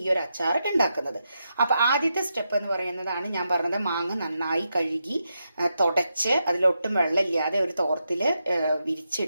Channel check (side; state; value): both; inverted; correlation -0.85